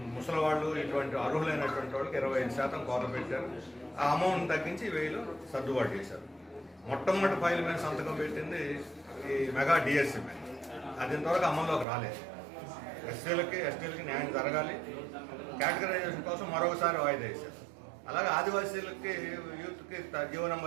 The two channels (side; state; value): left; drops out; at 11.9 s